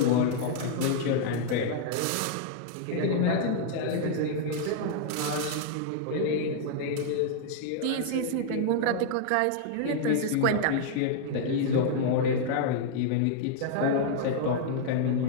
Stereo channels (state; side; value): different; both; correlation -0.01